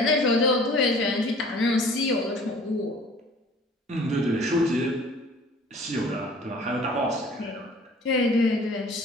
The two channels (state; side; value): normal; both; correlation 0.50